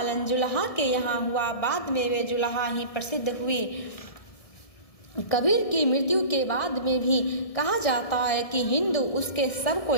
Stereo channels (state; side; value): late; right; 1.7 ms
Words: जुल्हा के यहाँ हुआ। बाद में वे जुल्हा ही प्रसिद्ध हुए। कबीर की मृत्यु के बाद में भी कहा जाता है कि हिंदू उसके शव को